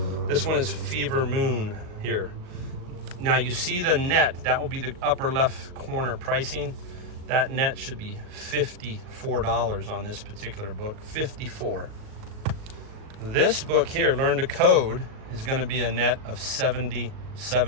This one is Fever Moon here. Now you see the net, that will be the upper left corner pricing. That net should be $54 on this particular book, $54. This book here, Learn to Code, is gonna be a net of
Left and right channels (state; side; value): late; left; 38 ms